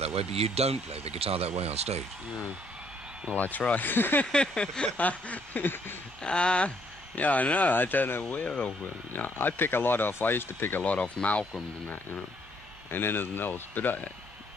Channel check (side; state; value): both; normal; correlation 0.68